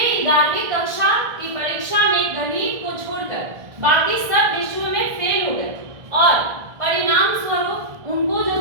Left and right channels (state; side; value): late; left; 1.6 ms